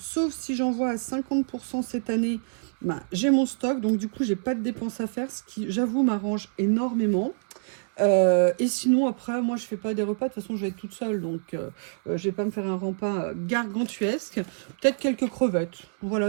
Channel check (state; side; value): silent; left; 61 dB below the other